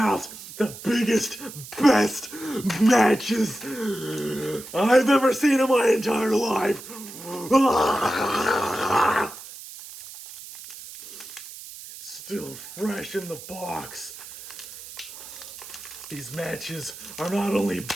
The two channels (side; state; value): right; noise; hiss, 14 dB below the sound